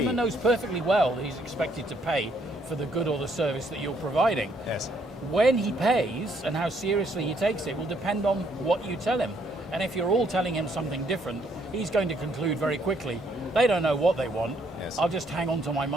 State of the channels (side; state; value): both; normal; correlation 0.69